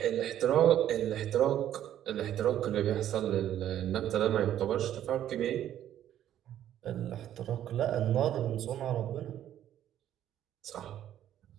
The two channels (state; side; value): quieter; left; 11.3 dB